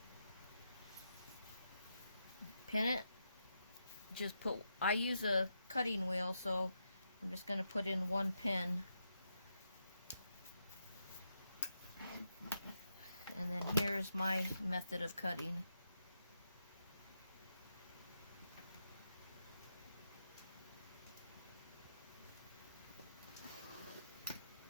pin it. I use a cutting wheel, so I'm just going to put in 1 pin. And then here's my method of cutting.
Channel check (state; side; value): inverted; both; correlation -0.84